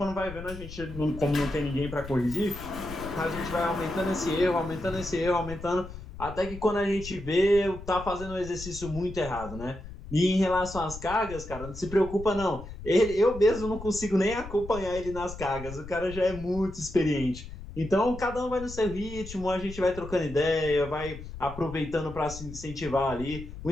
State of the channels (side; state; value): left; noise; rumble, 12 dB below the sound